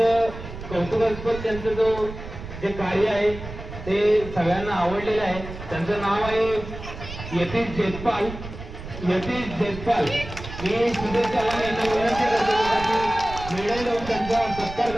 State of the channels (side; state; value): right; noise; rumble, 11 dB below the sound